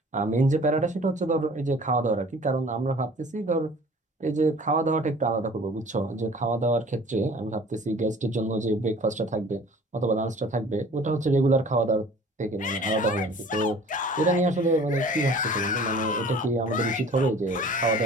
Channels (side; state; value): both; normal; correlation 0.48